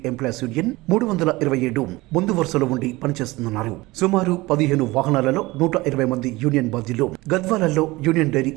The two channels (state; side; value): quieter; left; 20.8 dB